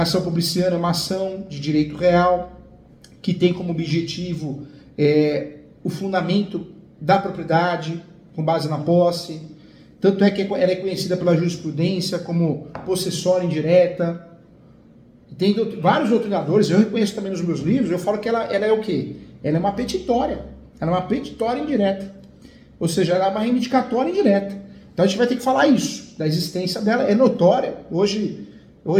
ação publiciana é uma ação de direito real, que tem como objetivo o fundamento da propriedade, com base na posse. Tanto é que ela é conhecida pela jurisprudência como possessória indireta. Tem vários doutrinadores, eu reconheço também nos meus livros, eu falo que ela é o quê? Ela é uma petitória. Ela é uma petitória indireta. Ou seja, ela é uma reivindicatória indireta. Então a gente vai ter que falar isso, da existência dela, é notória. Hoje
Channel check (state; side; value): identical; both; correlation 1.00